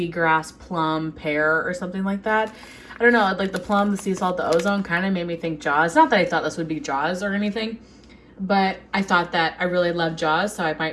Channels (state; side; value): identical; both; correlation 1.00